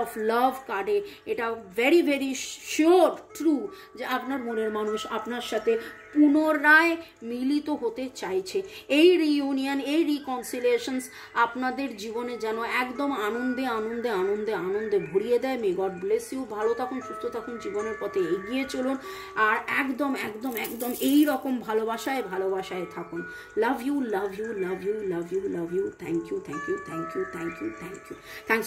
of love কার্ডে এটা ভেরি ভেরি শিওর ট্রু যে আপনার মনের মানুষ আপনার সাথে পুনরায় মিলিত হতে চাইছে। এই রিইউনিয়ন এই রিকনসিলিয়েশনস আপনাদের জীবনে যেন একদম আনন্দে আনন্দে আনন্দে আনন্দে ভরিয়ে দেয়। মে গড ব্লেস ইউ, ভালো থাকুন সুস্থ থাকুন, জীবনের পথে এগিয়ে চলুন, আর একদম একদম একদম এই রকম ভালোবাসায় ভালোবাসায় থাকুন। Love you love you love you love you love you, thank you thank you thank you thank you thank you, thanks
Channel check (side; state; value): both; identical; correlation 1.00